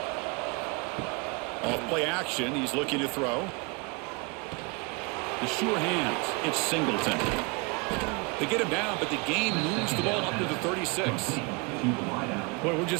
Off play action, he's looking to throw. The sure hands. It's Singleton. They get him down, but the game moves the ball up to the 36. Well, we're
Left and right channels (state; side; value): quieter; left; 29.4 dB